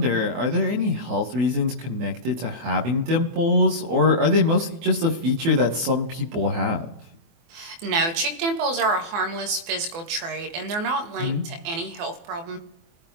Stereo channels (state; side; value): late; left; 24 ms